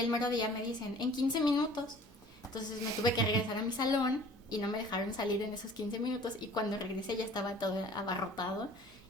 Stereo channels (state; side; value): normal; both; correlation 0.49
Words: mero día me dicen, en 15 minutos. Entonces me tuve que regresar a mi salón y no me dejaron salir en esos 15 minutos y cuando regresé ya estaba todo abarrotado